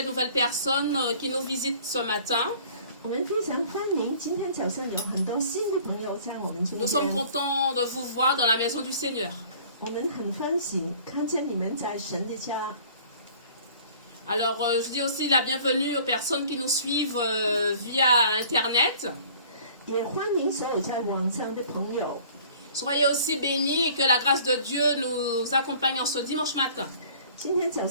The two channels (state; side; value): inverted; both; correlation -0.51